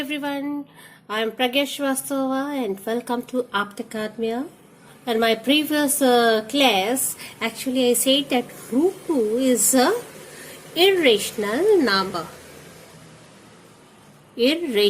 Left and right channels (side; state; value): both; identical; correlation 1.00